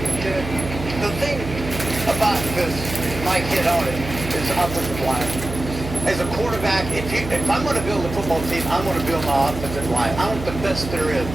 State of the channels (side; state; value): right; noise; hum, 8 dB below the sound